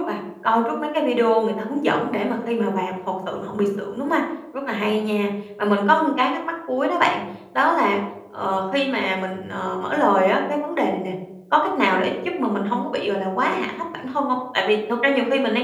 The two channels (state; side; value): identical; both; correlation 1.00